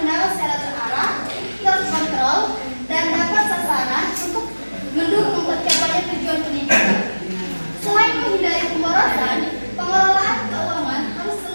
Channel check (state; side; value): inverted; both; correlation -1.00